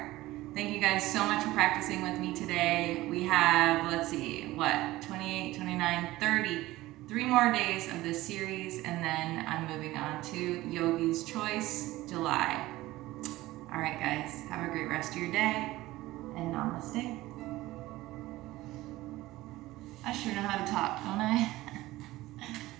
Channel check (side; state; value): left; quieter; 17.7 dB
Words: Thank you guys so much for practicing with me today. We have, let's see, 28, 29, 30, 3 more days of this series, and then I'm moving on to Yogi's Choice, July. All right, guys, have a great rest of your day, and namaste. I sure know how to talk, don't I?